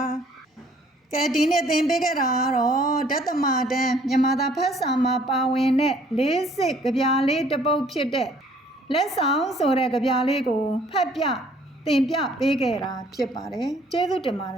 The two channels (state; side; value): normal; both; correlation 0.59